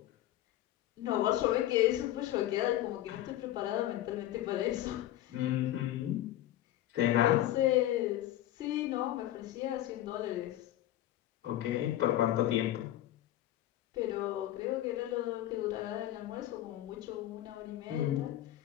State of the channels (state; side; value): quieter; right; 13.8 dB